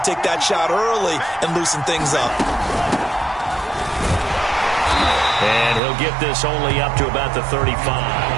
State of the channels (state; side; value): drops out; left; at 5.8 s